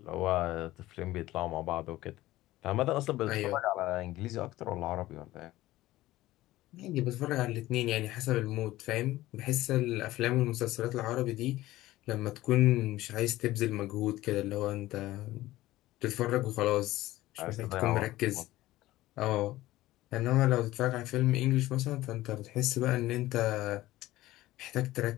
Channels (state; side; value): quieter; right; 16.6 dB